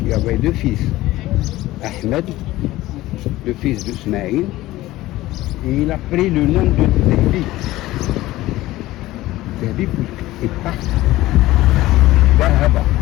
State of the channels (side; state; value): right; quieter; 17.0 dB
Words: il y avait deux fils. Ahmed, le fils d'Ismaïl, et il a pris le nom de Dehbi. Dehbi, puisqu'il est parti d'Ahaba,